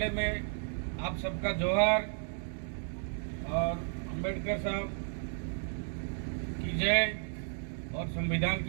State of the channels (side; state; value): left; silent; 55 dB below the other